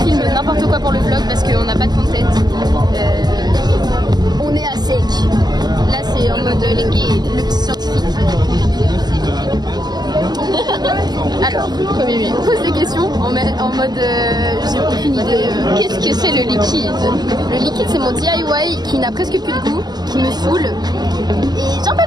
n'importe quoi pour le vlog parce qu'on n'a pas de content. On est à sec. Là c'est en mode les gays, le petit scientifique. Alors, on pose des questions en mode j'ai aucune idée. Qu'est-ce que c'est le liquide? Le liquide c'est mon DIY qui n'a presque plus de goût, qui me saoule. Et j'en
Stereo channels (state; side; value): late; left; 0.20 ms